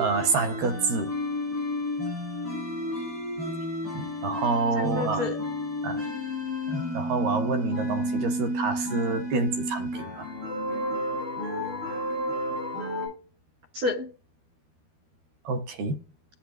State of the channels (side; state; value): left; late; 13 ms